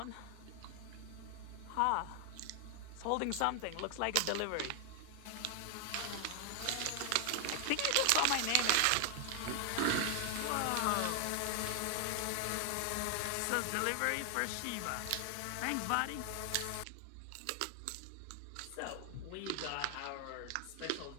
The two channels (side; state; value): both; different; correlation 0.00